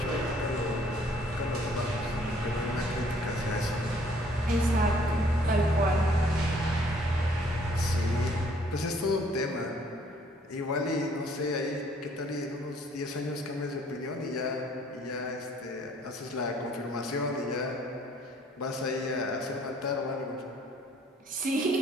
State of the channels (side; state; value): both; normal; correlation 0.61